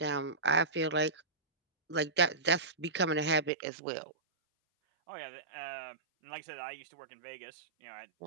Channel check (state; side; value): drops out; left; at 3.5 s